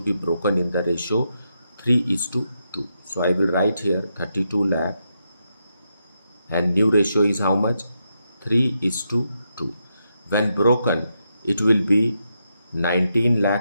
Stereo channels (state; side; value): inverted; both; correlation -0.83